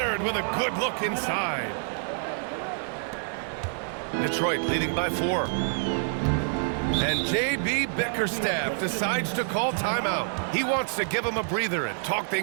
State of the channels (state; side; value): silent; left; 60 dB below the other